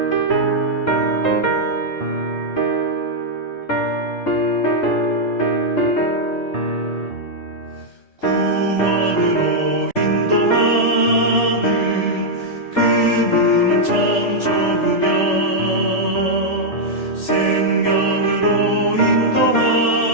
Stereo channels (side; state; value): right; late; 3.4 ms